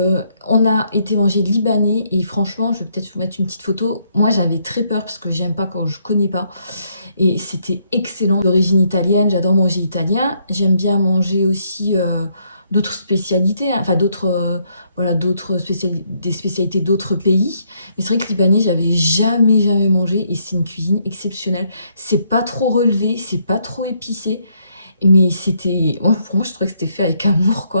a été manger libanais et franchement, je vais peut-être vous mettre une petite photo. Moi, j'avais très peur parce que j'aime pas quand je connais pas. Et c'était excellent. D'origine italienne, j'adore manger italien. J'aime bien manger aussi d'autres spécialités, hein. Enfin voilà, des spécialités d'autres pays. Mais c'est vrai que libanais, j'avais jamais mangé et c'est une cuisine exceptionnelle. C'est pas trop relevé, c'est pas trop épicé. Mais pour moi, je trouvais que c'était fait avec amour,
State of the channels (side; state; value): both; inverted; correlation -0.73